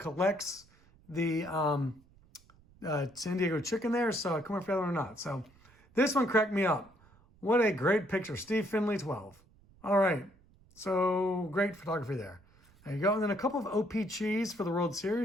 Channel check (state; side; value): noise; right; rumble, 28 dB below the sound